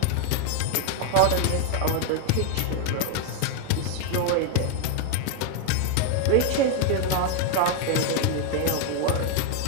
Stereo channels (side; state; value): both; different; correlation 0.00